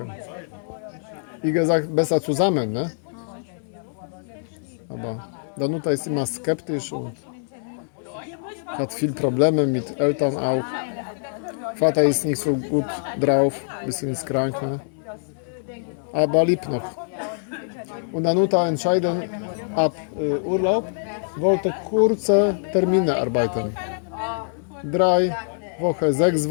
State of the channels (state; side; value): silent; right; digital silence